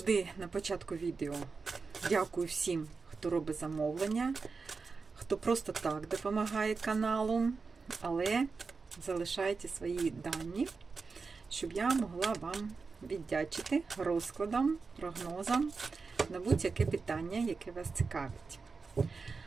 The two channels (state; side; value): quieter; left; 4.6 dB